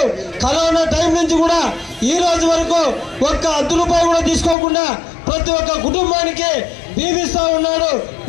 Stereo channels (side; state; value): right; drops out; at 4.5 s